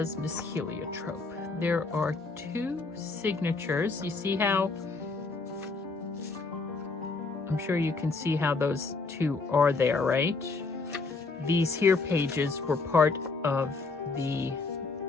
Miss Heliotrope? There are 2 signatures. You see how, I'm sure you can see how those 2 are there, right? These here pages were part of the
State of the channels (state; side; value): quieter; right; 3.9 dB